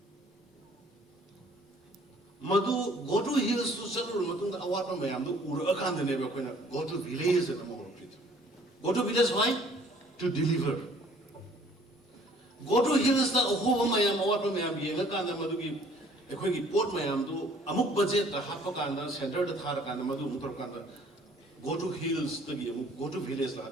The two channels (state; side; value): normal; both; correlation 0.57